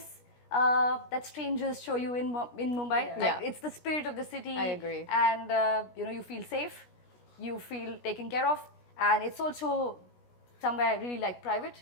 that strangers show you in Mumbai. Like it's the spirit of the city. I agree. And you feel safe, you feel taken care of, and it's also somewhere really like private,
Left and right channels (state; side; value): late; right; 17 ms